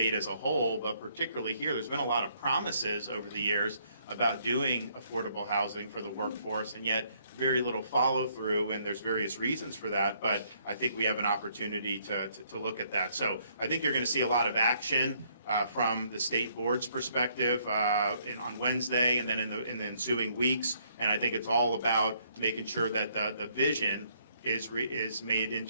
as a whole, but particularly here, there's been a lot of promises over the years about doing affordable housing for the workforce, and yet very little follow through, and there's various reasons for that, but I think we have an opportunity to look at that. So I think you're going to see a lot of action from the state board's perspective on Wednesday and then in the ensuing weeks, and I think it's all about making sure that the vision is made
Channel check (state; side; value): inverted; both; correlation -0.68